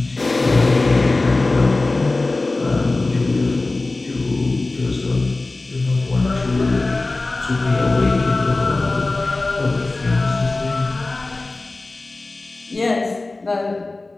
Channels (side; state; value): right; quieter; 3.2 dB